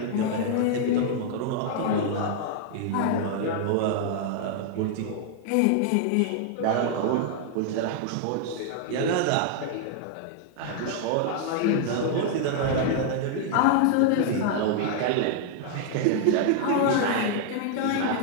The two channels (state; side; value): different; both; correlation 0.00